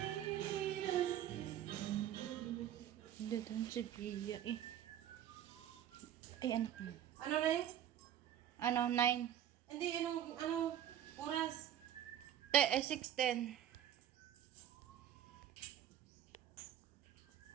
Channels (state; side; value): quieter; left; 10.9 dB